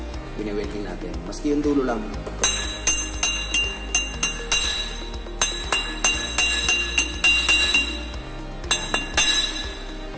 bine-welding natin. Maski yung dulo lang.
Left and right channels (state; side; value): identical; both; correlation 1.00